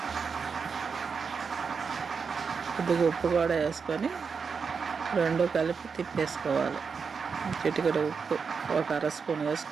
కొద్దిగా ఉప్పు కూడా వేసుకొని 2 కలిపి తిప్పేసుకోవాలి. చిటికెడు ఉప్పు 1/2 స్పూన్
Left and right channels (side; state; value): left; quieter; 5.6 dB